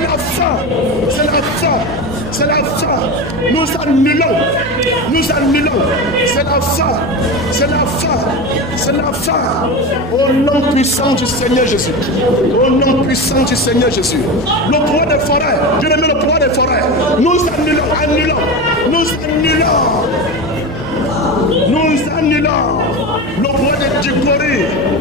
Nous annulons. C'est la fin. Au nom puissant du Seigneur Jésus. Le pouvoir des forêts. Dieu aime le pouvoir des forêts. Nous annulons. Le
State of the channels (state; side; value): normal; both; correlation 0.23